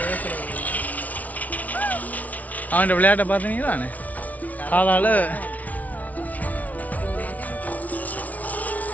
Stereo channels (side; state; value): right; late; 0.072 ms